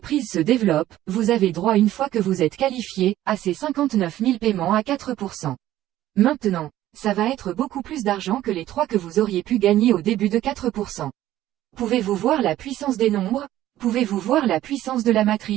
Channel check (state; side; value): quieter; left; 13.8 dB